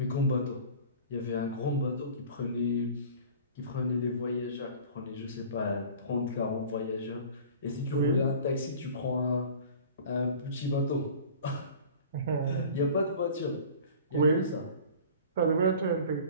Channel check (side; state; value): both; inverted; correlation -0.43